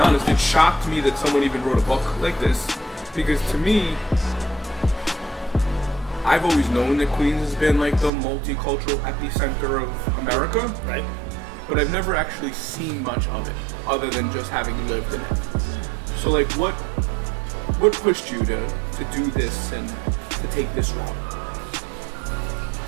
it shocked me that someone even wrote a book like this. Because to me, I've always known that Queens has been like the multicultural epicenter of America. Right. But I've never actually seen much of it, other than just having lived in it. So like, what pushed you to do this and to take this route?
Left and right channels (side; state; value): left; drops out; at 8.1 s